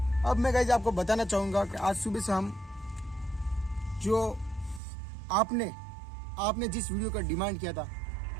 अब मैं गाइस आपको बताना चाहूँगा कि आज सुबह से हम जो आपने जिस वीडियो का डिमांड किया था,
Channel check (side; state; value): left; drops out; at 4.8 s